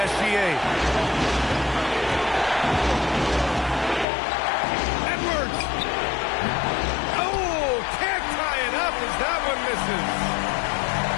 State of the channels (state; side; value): drops out; right; at 4.0 s